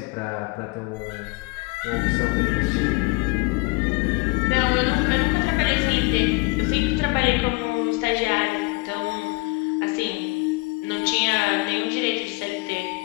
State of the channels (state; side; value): quieter; right; 26.2 dB